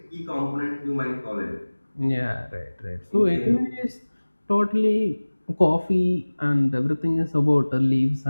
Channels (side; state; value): both; inverted; correlation -1.00